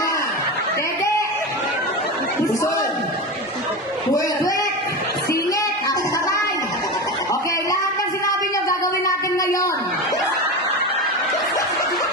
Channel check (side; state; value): both; normal; correlation 0.22